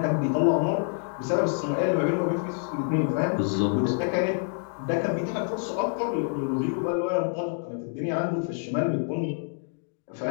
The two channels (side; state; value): right; silent; 55 dB below the other